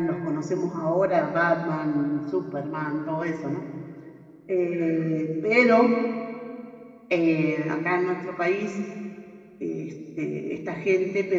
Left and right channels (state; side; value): identical; both; correlation 1.00